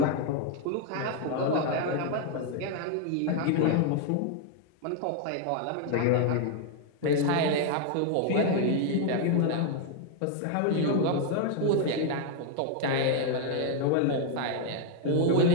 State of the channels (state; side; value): different; both; correlation 0.00